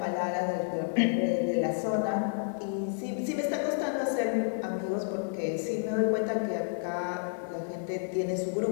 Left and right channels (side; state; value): right; silent; 58 dB below the other